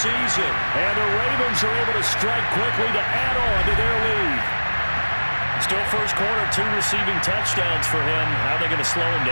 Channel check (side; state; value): both; inverted; correlation -1.00